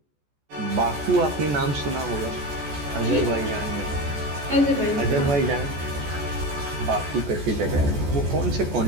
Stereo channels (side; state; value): left; late; 14 ms